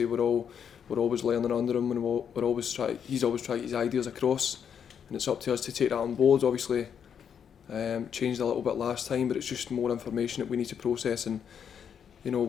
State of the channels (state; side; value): quieter; right; 7.9 dB